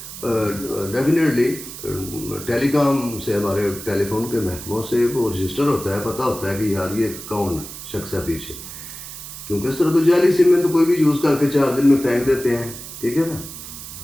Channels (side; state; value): right; noise; hiss, 12 dB below the sound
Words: ڈیفینیٹلی ٹیلی کام سے ہمارے ٹیلی فون کے محکموں سے وہ رجسٹر ہوتا ہے، پتہ ہوتا ہے کہ یار یہ کون شخص ہے پیچھے. کیونکہ اس طرح تو جعلی سم میں تو کوئی بھی یوز کر کے 4 دن میں پھینک دیتے ہیں، ٹھیک ہے نا.